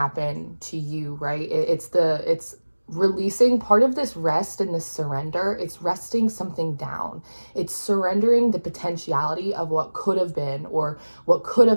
to you, right? It's releasing part of this rest and this surrender. It's resting something down. It's surrendering the potentiality of what could have been or what could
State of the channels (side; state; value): both; inverted; correlation -1.00